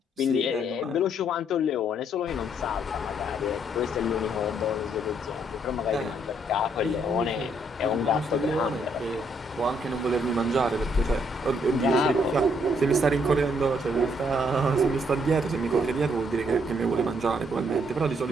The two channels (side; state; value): both; normal; correlation 0.70